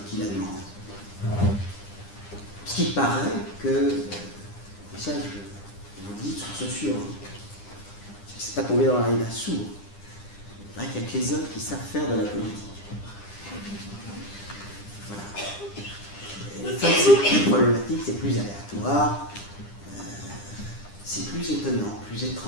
qui la demandent. Ce qui paraît que, et ça je vous le dis de source sûre, c'est pas tombé dans l'oreille d'un sourd. Il paraît qu'il n'y a que les hommes qui savent faire de la politique. Voilà. Les femmes, c'est plus problématique, c'est plus aléatoire, c'est plus étonnant, plus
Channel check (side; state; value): right; late; 9.9 ms